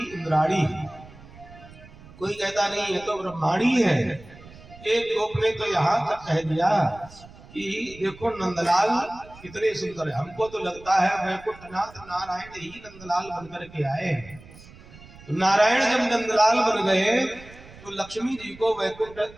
इंद्राणी। कोई कहता नहीं है तो ब्रह्मांडी है। एक गोप ने तो यहाँ तक कह दिया कि देखो नंदलाल कितने सुंदर है, हमको तो लगता है वैकुंठनाथ नारायण ही नंदलाल बनकर के आए। नारायण जब नंदलाल बन गए तो लक्ष्मी जी को वैकुंठ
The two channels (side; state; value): right; noise; rumble, 20 dB below the sound